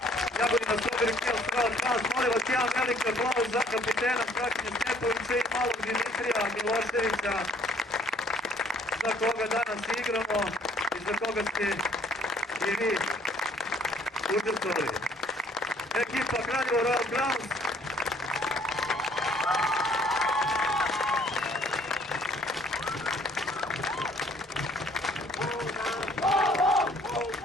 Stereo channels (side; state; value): both; normal; correlation 0.60